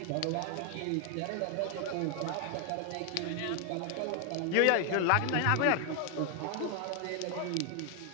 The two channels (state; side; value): different; both; correlation 0.00